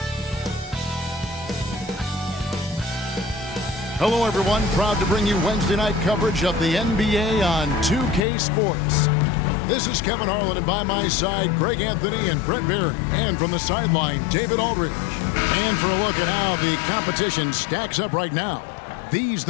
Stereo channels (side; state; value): right; drops out; at 8.2 s